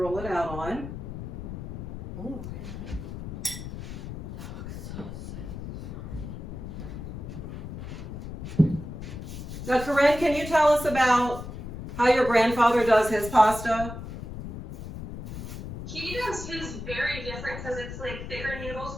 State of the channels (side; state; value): left; noise; rumble, 8 dB below the sound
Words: roll it out on. Ooh. Now, Corinne, can you tell us about how your grandfather does his pasta? He does his very different because it's like thicker noodles